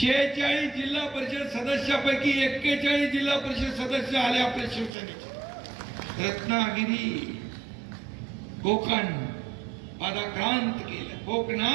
जिल्हा परिषद सदस्यापैकी 41 जिल्हा परिषद सदस्य आले आपल्या शिवसेनेचे. रत्नागिरी, कोकण पादाक्रांत केलं.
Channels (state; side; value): drops out; left; at 4.9 s